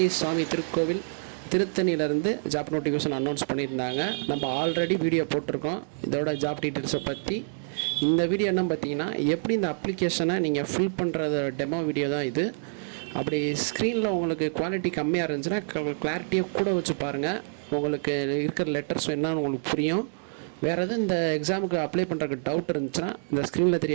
சுவாமி திருக்கோவில் திருத்தணியிலேருந்து ஜாப் நோட்டிஃபிகேஷன் அனௌன்ஸ் பண்ணியிருந்தாங்க. நம்ம ஆல்ரெடி வீடியோ போட்டிருக்கோம் இதோட ஜாப் டீட்டெயில்ஸை பற்றி. இந்த வீடியோ என்ன பார்த்தீங்கன்னா, எப்படி இந்த அப்ளிகேஷனை நீங்கள் ஃபில் பண்ணுறது டெமோ வீடியோ தான் இது. அப்படி ஸ்க்ரீனில் உங்களுக்கு குவாலிட்டி கம்மியாக இருந்துச்சுன்னா கிளாரிட்டியாக கூட வச்சு பாருங்கள். உங்களுக்கு இருக்கிற லெட்டர்ஸ் என்னன்னு உங்களுக்கு புரியும். வேறு எதுவும் இந்த எக்ஸாமுக்கு அப்ளை பண்ணுறதுக்கு டவுட் இருந்துச்சுன்னா இந்த ஸ்க்ரீனில்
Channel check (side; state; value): left; silent; digital silence